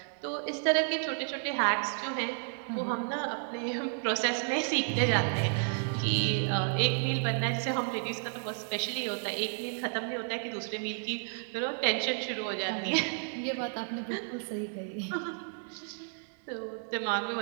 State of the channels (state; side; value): silent; left; 56 dB below the other